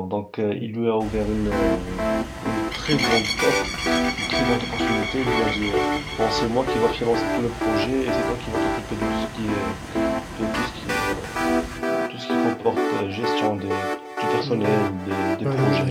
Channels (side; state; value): both; identical; correlation 1.00